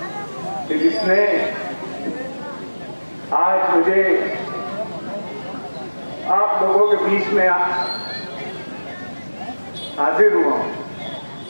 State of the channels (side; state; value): both; inverted; correlation -1.00